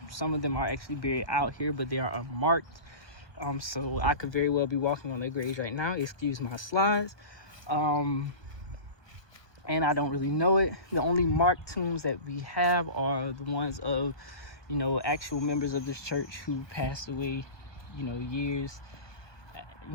some of them are actually buried out here, but they are unmarked. So I could very well be walking on their graves right now. Excuse my slides. And I don't really know it. The only marked tombs that we have are the ones of, actual members of this church who passed away, years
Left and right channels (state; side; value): late; right; 1.2 ms